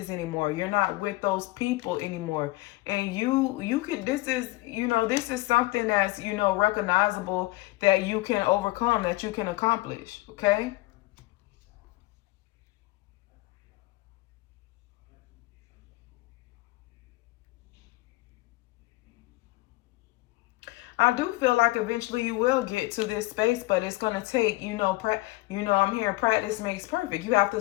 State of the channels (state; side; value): quieter; right; 20.3 dB